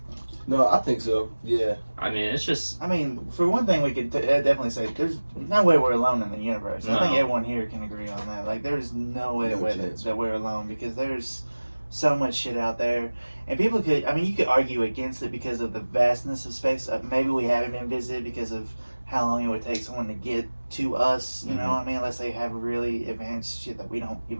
No, I think so. Yeah. I mean, it's just. I mean, for one thing, we could definitely say there's no way we're alone in the universe. No. I think everyone here can agree on that. Like, there's no way that we're alone because there's so much shit out there. And people could, you could argue against it because of the vastness of space. Maybe we haven't been visited because of how long it would take someone to get to us, you know what I mean? Unless they have really advanced shit that we don't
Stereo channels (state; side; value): inverted; both; correlation -1.00